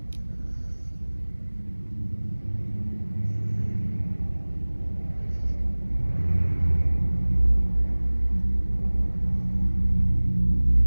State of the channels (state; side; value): inverted; both; correlation -1.00